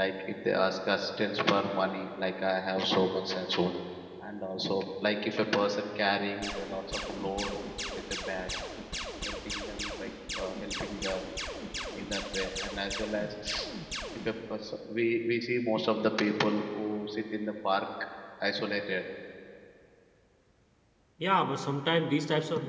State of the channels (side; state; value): both; identical; correlation 1.00